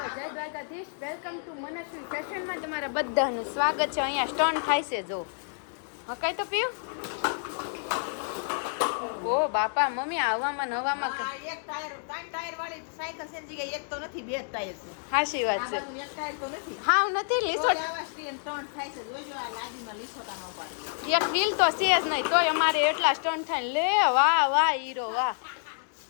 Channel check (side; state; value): right; silent; digital silence